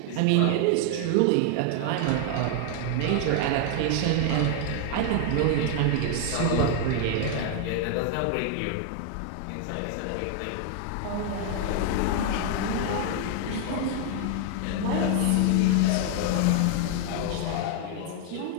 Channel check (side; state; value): both; different; correlation 0.00